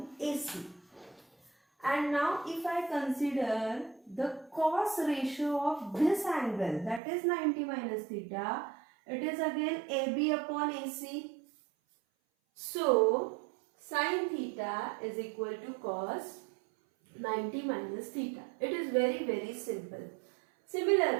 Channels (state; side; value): drops out; left; at 7.0 s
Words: AC. And now if I consider the cos ratio of this angle, that is 90 minus theta, it is again AB upon AC. So sin theta is equal to cos 90 minus theta. It is very, very simple.